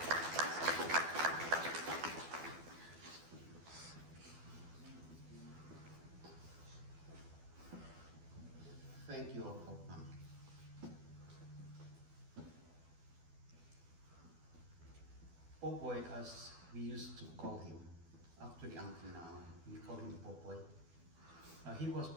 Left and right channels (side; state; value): left; late; 12 ms